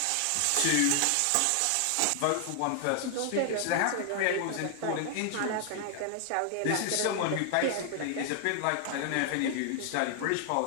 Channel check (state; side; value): different; both; correlation 0.00